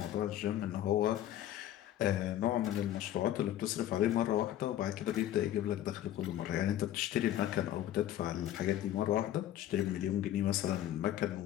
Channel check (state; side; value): quieter; right; 12.5 dB